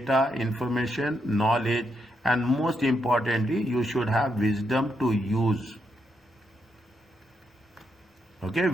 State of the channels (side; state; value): both; normal; correlation 0.80